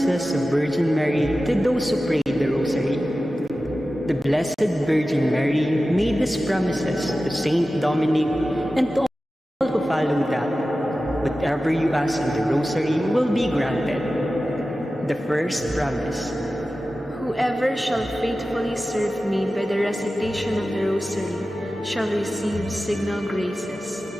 of Virgin Mary to those who pray the Rosary. The Blessed Virgin Mary made these promises to Saint Dominic and to all who follow that whatever you ask in the Rosary will be granted. The first promise: whoever shall faithfully serve me by the recitation of the Rosary shall receive signal graces.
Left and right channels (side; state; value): both; normal; correlation 0.94